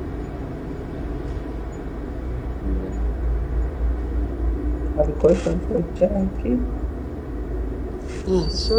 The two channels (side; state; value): both; identical; correlation 1.00